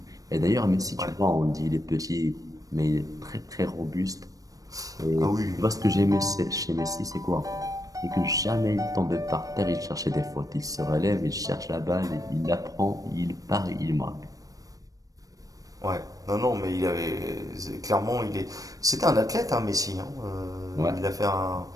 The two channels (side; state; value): left; late; 0.17 ms